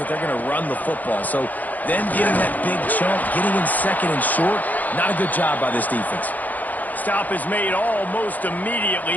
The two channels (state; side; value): late; right; 0.081 ms